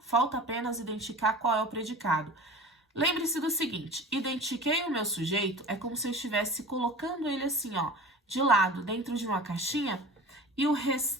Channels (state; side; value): normal; both; correlation 0.37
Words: falta apenas identificar qual é o predicado. Lembre-se do seguinte, identifiquei o meu sujeito, é como se eu estivesse colocando ele assim, ó, de lado, dentro de uma caixinha, e o